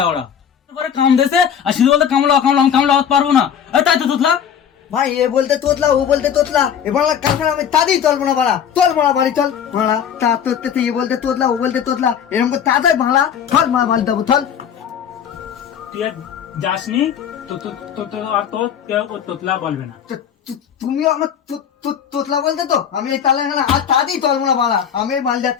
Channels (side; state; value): right; quieter; 8.4 dB